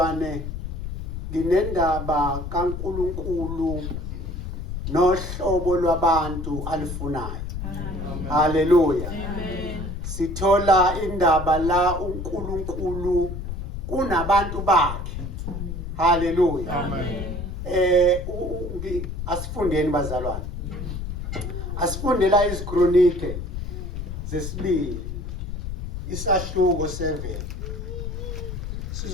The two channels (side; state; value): left; noise; rumble, 6 dB below the sound